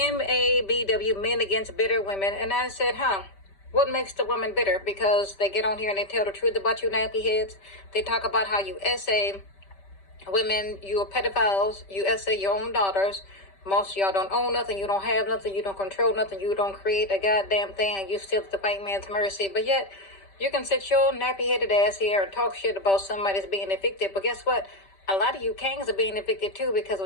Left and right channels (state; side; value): late; right; 5.1 ms